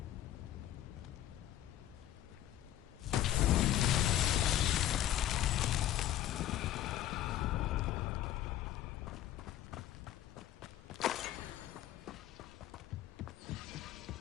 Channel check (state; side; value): quieter; right; 12.5 dB